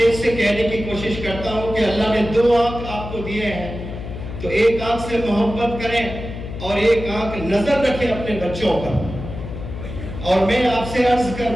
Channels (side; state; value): left; noise; hum, 9 dB below the sound